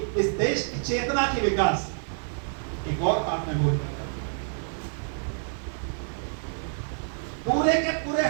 इस देश की चेतना की विकास। एक और बात मैं बोल रहा था, पूरे के पूरे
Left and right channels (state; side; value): silent; left; 60 dB below the other